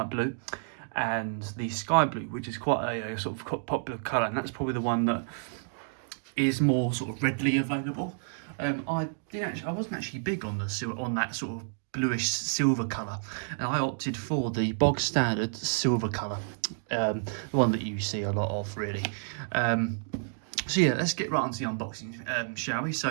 blue, and the sky blue, which is quite a sort of popular colour, and that's probably the one that is more sort of readily available. I wasn't actually big on that sort of bluish silver colour, and I opted for the bog standard silver colour, the one that you see a lot of really. So yeah, let's get right onto the unboxing, shall we?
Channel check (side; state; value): left; silent; digital silence